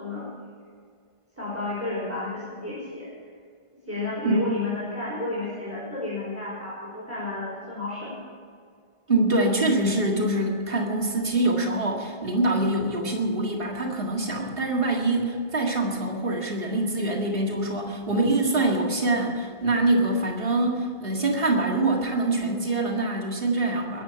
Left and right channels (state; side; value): late; right; 1.5 ms